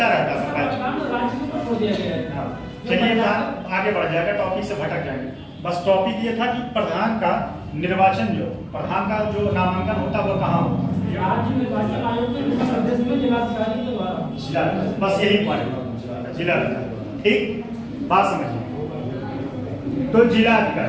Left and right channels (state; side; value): identical; both; correlation 1.00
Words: रहता था। राज्य में छोड़ दिया गया है। चलिए आगे बढ़ जाएगा, टॉपिक से भटक जाएंगे। बस टॉपिक ये था कि प्रधान का निर्वाचन, जो प्रधान का जो नामांकन होता है वो कहाँ होता है? राज्य निर्वाचन आयोग के प्रदेश में जिलाधिकारी के द्वारा। बस यही पॉइंट, जिलाधिकारी, ठीक, बात समझिए। तो